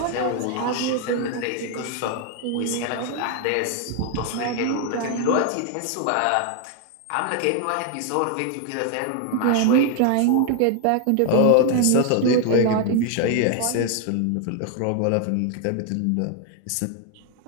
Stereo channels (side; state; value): both; different; correlation 0.01